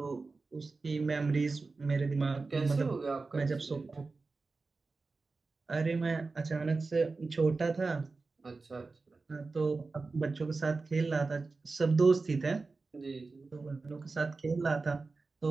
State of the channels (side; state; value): left; quieter; 3.9 dB